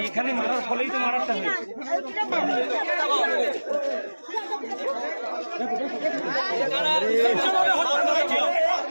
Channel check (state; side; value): inverted; both; correlation -1.00